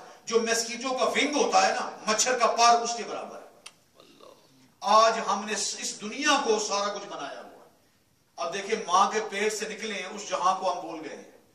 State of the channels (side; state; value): both; identical; correlation 1.00